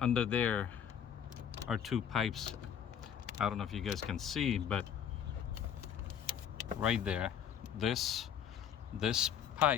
under there are two pipes. I don't know if you guys can see, but right there, this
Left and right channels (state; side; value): quieter; right; 8.7 dB